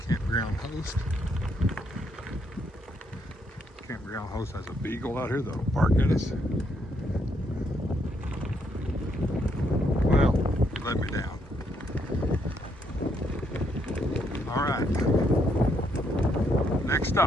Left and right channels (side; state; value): both; normal; correlation 0.75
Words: campground host. Campground host has a beagle out here that'll bark at us. Well, he let me down. All right. Next